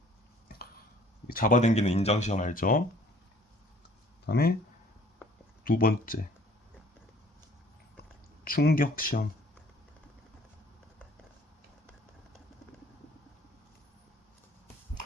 잡아당기는 인장시험 알죠? 그 다음에 두 번째 충격시험.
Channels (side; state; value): both; normal; correlation 0.55